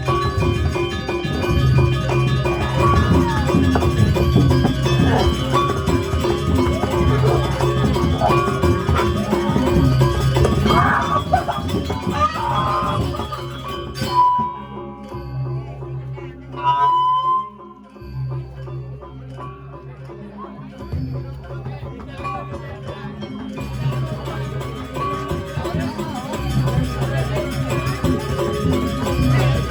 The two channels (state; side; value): identical; both; correlation 1.00